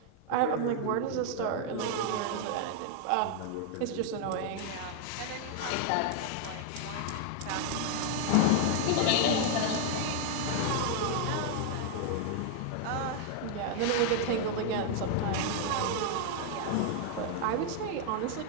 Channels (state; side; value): different; both; correlation 0.00